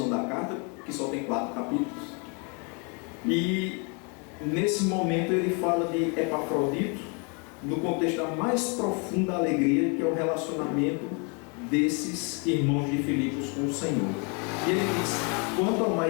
da carta, que só tem 4 capítulos, e nesse momento ele fala de Epafrodito, no contexto da mais profunda alegria, que é o relacionamento desses irmãos de Filipos com o Senhor. E ele diz: quanto ao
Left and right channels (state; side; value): quieter; right; 34.5 dB